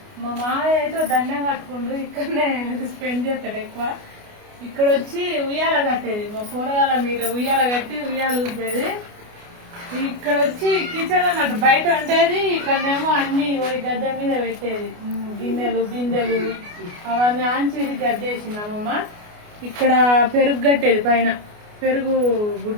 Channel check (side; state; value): left; late; 29 ms